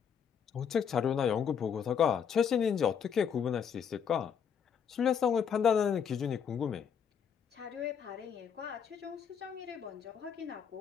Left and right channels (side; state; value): right; quieter; 7.5 dB